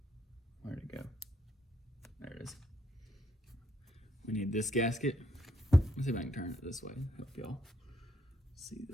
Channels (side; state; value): both; normal; correlation 0.74